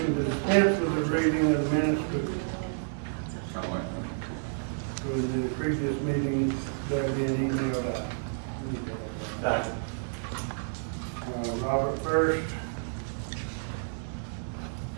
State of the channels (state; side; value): silent; left; digital silence